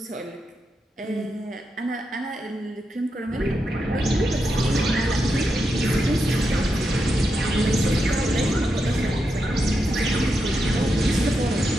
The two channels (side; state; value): both; normal; correlation 0.86